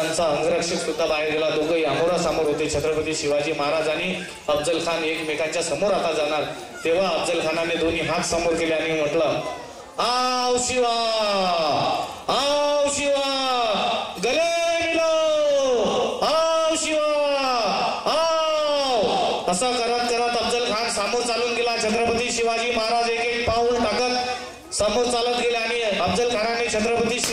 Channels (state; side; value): identical; both; correlation 1.00